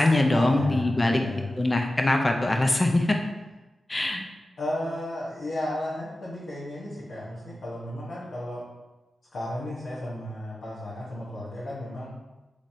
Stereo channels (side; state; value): both; normal; correlation 0.95